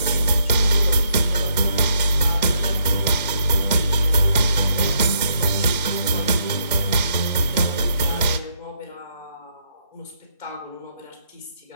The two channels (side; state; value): both; inverted; correlation -0.74